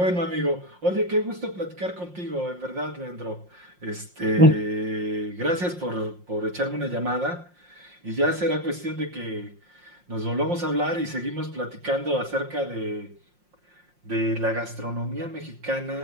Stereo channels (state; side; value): late; left; 5.6 ms